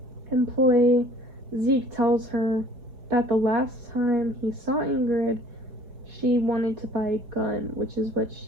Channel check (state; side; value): late; left; 4.9 ms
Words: employee, Zeke, tells her that the last time he saw Ingrid, she wanted to buy a gun, which is what